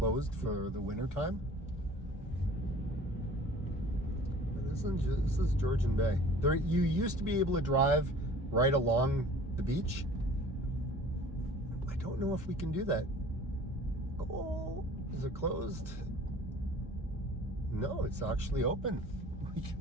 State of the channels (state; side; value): normal; both; correlation 0.47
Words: for the winter time. But this is Georgian Bay. There, you used to be able to drive right along the beach. I don't know if we can do that. Oh, is it closed? No, it's actually open. We